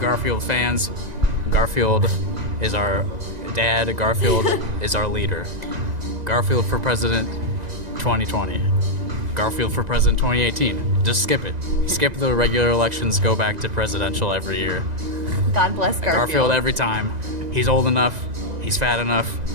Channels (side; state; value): left; late; 2.0 ms